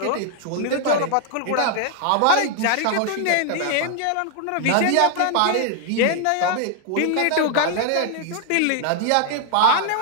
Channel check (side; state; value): both; different; correlation 0.00